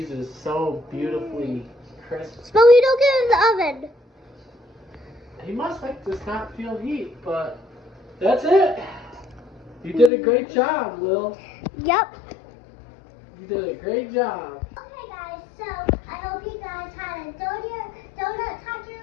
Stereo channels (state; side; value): drops out; right; at 10.1 s